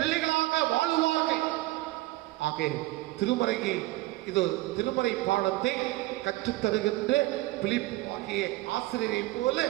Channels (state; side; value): quieter; left; 19.1 dB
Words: வாழுவார்கள். ஆக திருமறை பாடத்தை கற்றுத்தருகின்ற பிலிப்பு ஆகிய ஆசிரியரை போல